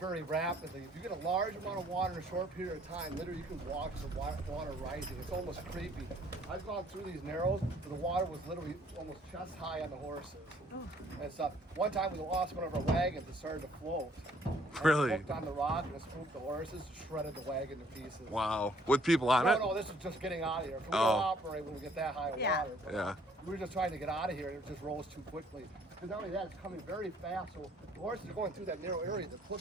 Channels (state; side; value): normal; both; correlation 0.61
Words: rapidly. If you get a large amount of water in a short period of time, literally you can watch the water rising. It's almost creepy. I've gone through these narrows where the water was literally almost chest high on the horses and stuff. One time we lost one of our wagons. It started to float. Really? Hooked on the rock and it spooked the horses, shredded the wagon to pieces. Wow. With people on it? No, this is just getting out of here. We don't Oh. operate when we get that high of water. But Yeah. we were just trying to get out of here and it just rose too quickly. Because not only that, it's coming very fast. So the horses are going through that narrow area. They're